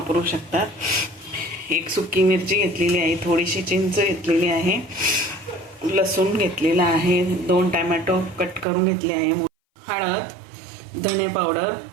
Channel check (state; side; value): drops out; left; at 8.7 s